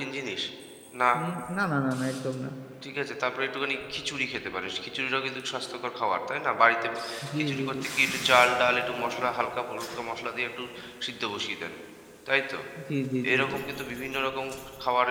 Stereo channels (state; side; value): identical; both; correlation 1.00